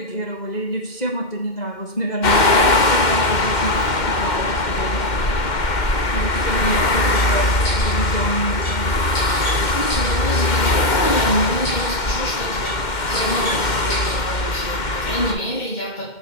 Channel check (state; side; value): late; right; 2.1 ms